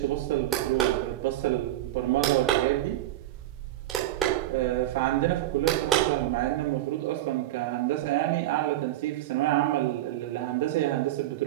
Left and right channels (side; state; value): left; quieter; 14.5 dB